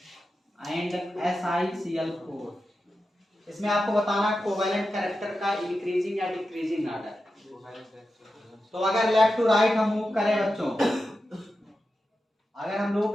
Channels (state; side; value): normal; both; correlation 0.91